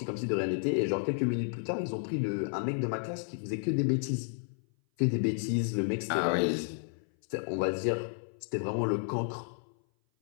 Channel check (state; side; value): silent; right; 56 dB below the other